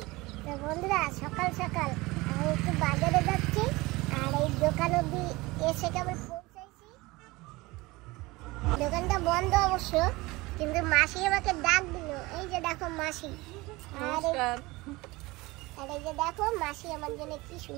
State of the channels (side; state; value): left; quieter; 21.7 dB